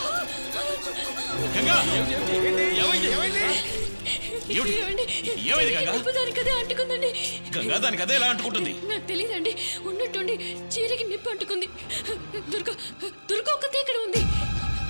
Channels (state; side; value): inverted; both; correlation -1.00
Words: గంగా, ఏమైంది గంగా? దానికదే అంటుకుందండి. గంగా, దానికి అదే ఎలా అంటుకుంటుంది? నాకు తెలియదండి, ఉన్నట్టుండి చీరకి నిప్పు అంటుకుంది. దుర్గ ఒక్కతే ఇక్కడ ఉంది.